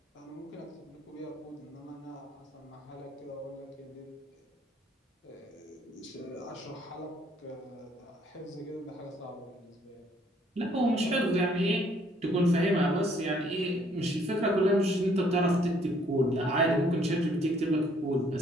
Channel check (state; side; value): normal; both; correlation 0.64